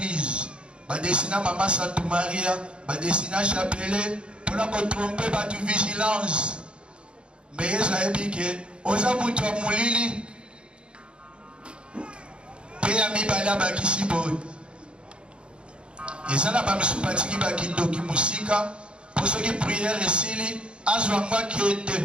badesina Mama Sainte Maria, badesina chapelet mpona kotrompe bato vigilance. Me Yesu ayebi ke oza mutu ya molili mpe ya mibale abakisi boye. Eza na bamisu batiki bakindoki musika mpo soki priere esili azwa ngo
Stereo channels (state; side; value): late; left; 0.056 ms